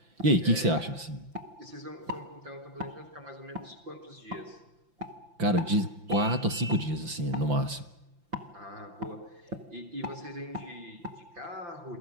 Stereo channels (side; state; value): left; late; 5.8 ms